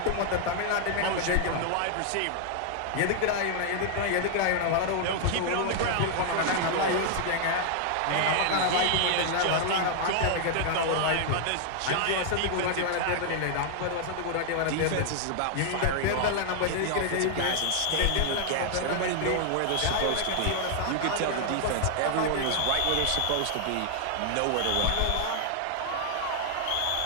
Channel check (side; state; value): both; different; correlation 0.00